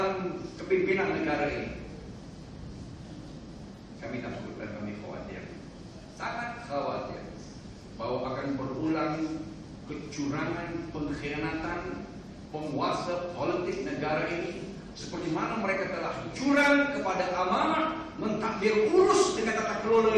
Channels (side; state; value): both; identical; correlation 1.00